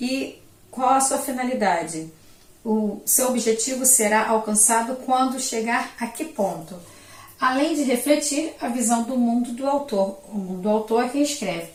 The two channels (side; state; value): both; identical; correlation 1.00